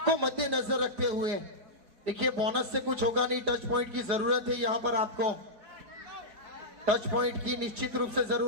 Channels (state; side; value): late; left; 4.9 ms